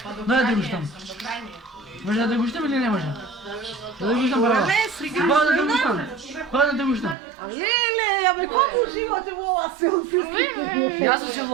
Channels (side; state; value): left; drops out; at 7.2 s